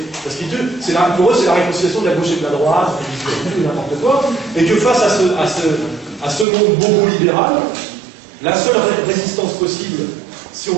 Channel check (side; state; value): left; drops out; at 6.5 s